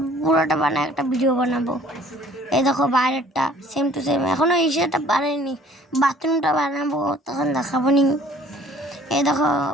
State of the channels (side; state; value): both; normal; correlation 0.54